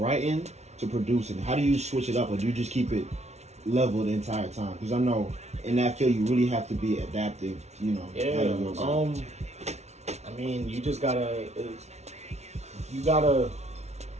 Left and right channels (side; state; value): left; late; 0.32 ms